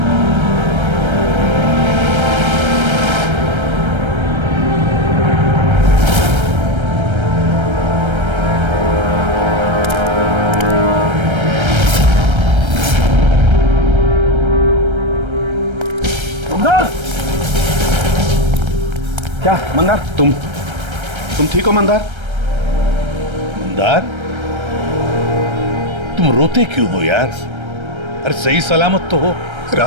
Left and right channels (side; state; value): left; late; 1.3 ms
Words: क्या मंदार, तुम ठीक हो मंदार? मंदार, तुम रोते क्यों हो यार? अरे सही सलामत तो हो।